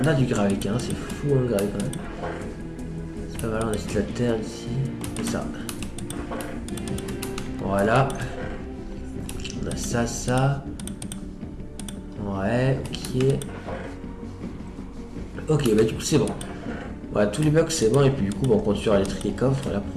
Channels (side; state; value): both; identical; correlation 1.00